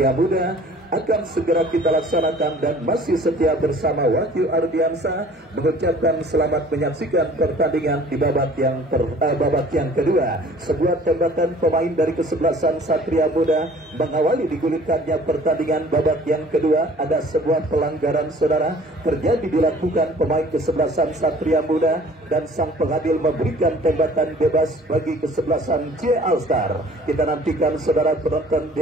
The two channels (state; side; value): normal; both; correlation 0.51